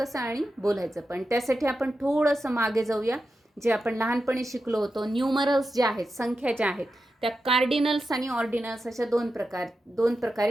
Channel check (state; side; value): normal; both; correlation 0.90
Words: आणि बोलायचं पण. त्यासाठी आपण थोडंसं मागे जाऊया. जे आपण लहानपणी शिकलो होतो, न्यूमरल्स जे आहेत, संख्या ज्या आहेत, त्या कार्डिनल्स आणि ऑर्डिनल्स अशा दोन